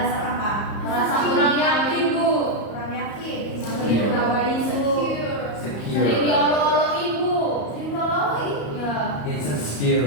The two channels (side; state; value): right; late; 34 ms